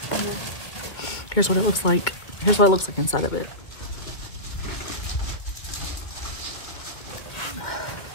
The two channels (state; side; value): late; right; 2.0 ms